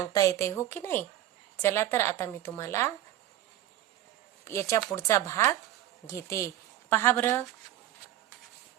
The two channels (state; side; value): quieter; left; 13.2 dB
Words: येते हो की नाही. चला तर आता मी तुम्हाला याच्या पुढचा भाग घेते. पहा बरं,